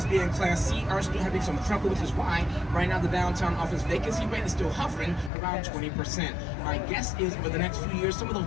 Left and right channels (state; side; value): drops out; right; at 5.3 s